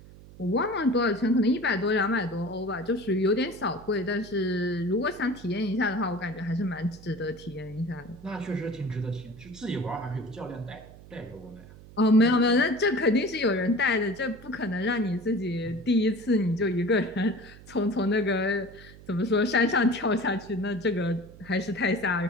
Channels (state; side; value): noise; right; hum, 19 dB below the sound